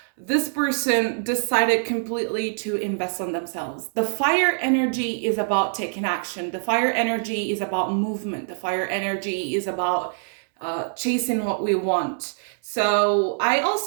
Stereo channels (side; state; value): left; silent; 62 dB below the other